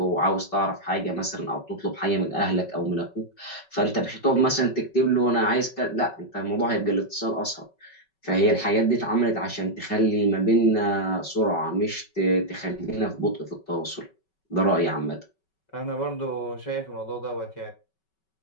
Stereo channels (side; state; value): right; late; 5.3 ms